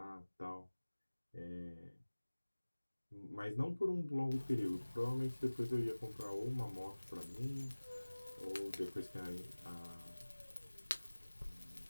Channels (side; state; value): both; inverted; correlation -1.00